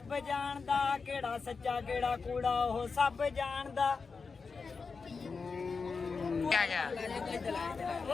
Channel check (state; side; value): quieter; right; 4.8 dB